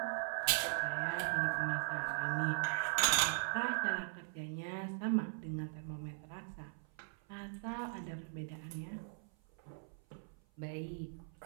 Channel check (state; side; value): silent; left; 51 dB below the other